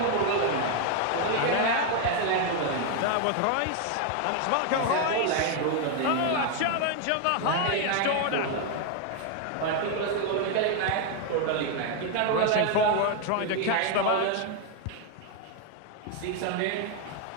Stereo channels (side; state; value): both; different; correlation 0.01